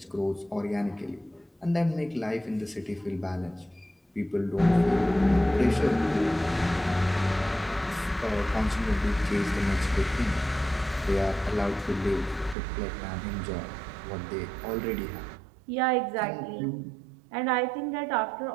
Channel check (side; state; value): left; drops out; at 12.6 s